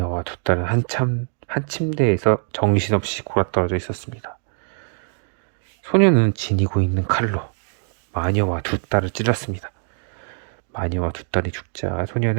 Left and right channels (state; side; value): silent; left; 64 dB below the other